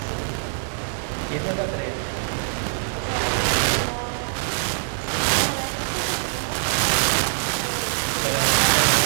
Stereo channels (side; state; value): left; silent; digital silence